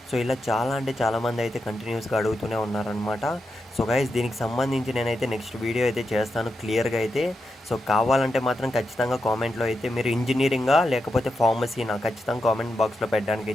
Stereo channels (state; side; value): normal; both; correlation 0.86